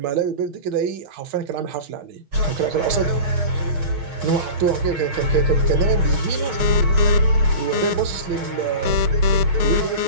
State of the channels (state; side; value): late; left; 6.4 ms